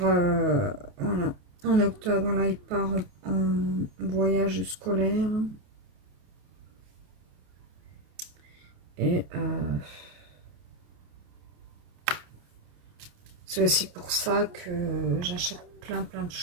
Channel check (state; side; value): late; left; 28 ms